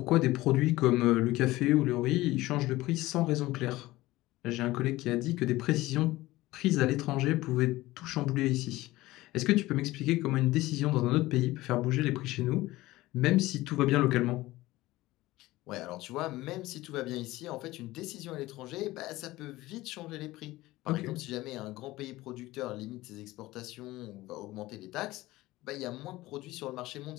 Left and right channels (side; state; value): right; quieter; 18.2 dB